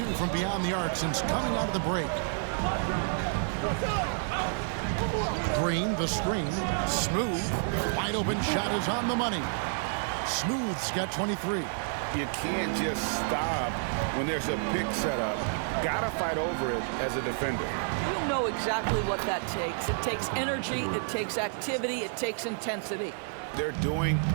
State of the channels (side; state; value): left; silent; digital silence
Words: from beyond the arc since coming out of the break. Green, the screen. Smooth. Wide open shot is on the money. Smooth's got 23. You can't just stop when there's a pick set up. Gotta fight over it as a defender. You know exactly what that takes. It takes energy, it takes activity, it takes intensity. They're doing